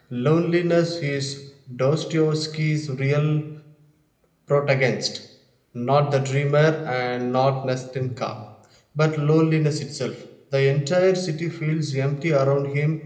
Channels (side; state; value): both; identical; correlation 1.00